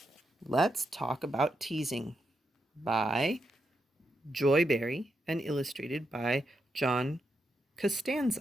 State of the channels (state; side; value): normal; both; correlation 0.83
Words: Let's Talk About Teasing by Joy Berry and illustrated by John